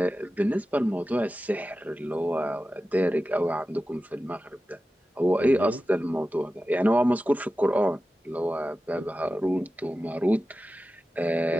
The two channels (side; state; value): both; normal; correlation 0.94